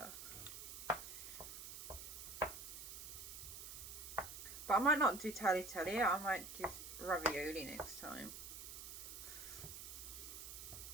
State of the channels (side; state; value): right; noise; hiss, 9 dB below the sound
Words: But I might not do tagliatelle, I might do ravioli next time.